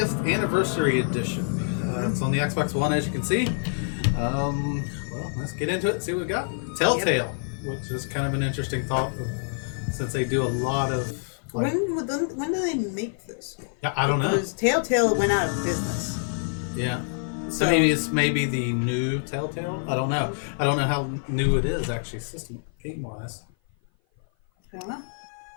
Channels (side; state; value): right; silent; 55 dB below the other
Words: anniversary edition. It's on the Xbox One, as you can see. Well, let's get into it and see what we got. Telltale, which is kind of an interesting thought, since they do a lot of. Like, when do they make this? Yeah, I don't know. Because Telltale went out of business. Yeah. So it's maybe the new Telltale. I don't know. I don't know how new it is actually, system game wise. I don't know.